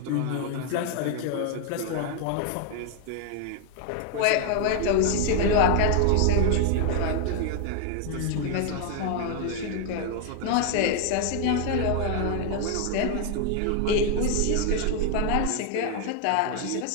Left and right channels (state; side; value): different; both; correlation 0.00